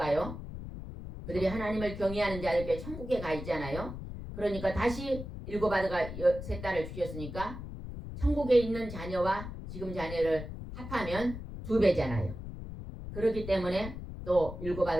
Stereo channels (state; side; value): noise; left; rumble, 9 dB below the sound